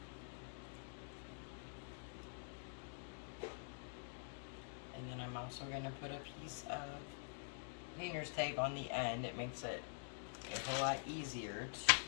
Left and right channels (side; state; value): right; silent; digital silence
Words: And then I'm also going to put a piece of painter's tape on the end. It makes it a whole lot easier